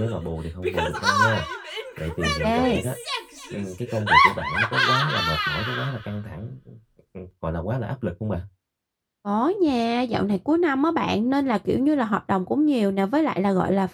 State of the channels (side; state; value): both; identical; correlation 1.00